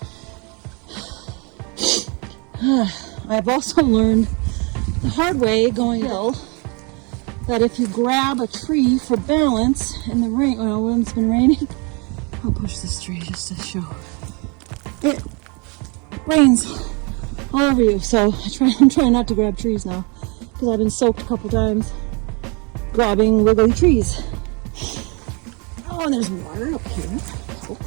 I've also learned the hard way going hill that if you grab a tree for balance in the rain, when it's been raining, I'll push this tree just to show. It rains all over you, so I'm trying not to grab trees now because I've been soaked a couple times grabbing wiggly trees. Oh, and there's water up here.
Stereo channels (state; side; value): quieter; left; 31.8 dB